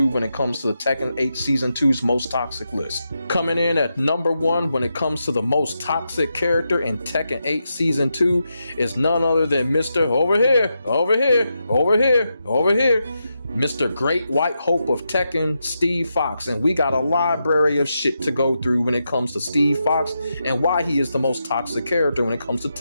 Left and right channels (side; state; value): both; inverted; correlation -0.86